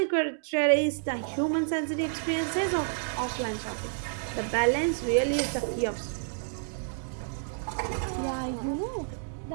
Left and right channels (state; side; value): silent; left; digital silence